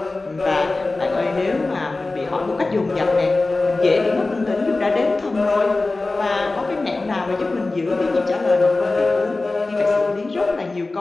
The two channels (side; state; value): right; quieter; 3.3 dB